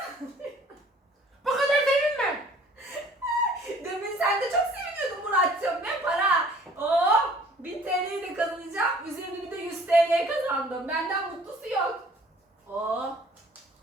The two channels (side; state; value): both; normal; correlation 0.54